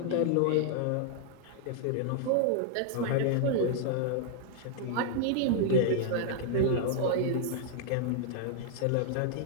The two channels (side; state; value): both; different; correlation -0.01